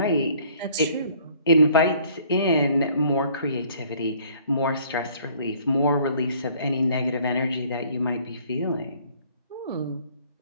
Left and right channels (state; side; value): inverted; both; correlation -0.57